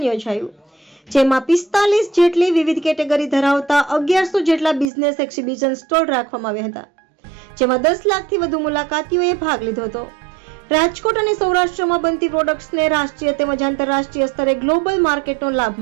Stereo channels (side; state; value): left; drops out; at 4.9 s